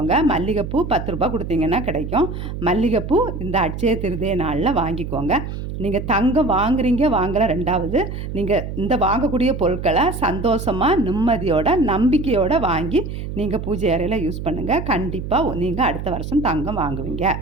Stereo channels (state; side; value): noise; right; hum, 7 dB below the sound